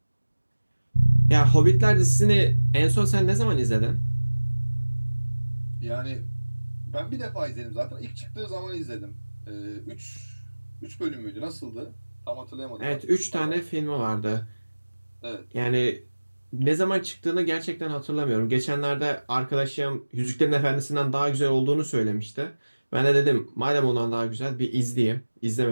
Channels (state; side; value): inverted; both; correlation -1.00